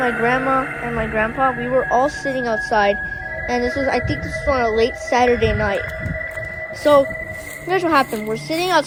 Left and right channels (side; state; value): both; identical; correlation 1.00